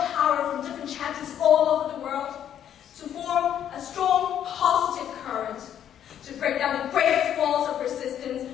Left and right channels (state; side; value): quieter; right; 10.0 dB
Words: power from different chapters all over the world to form a strong, positive current to break down the greatest walls of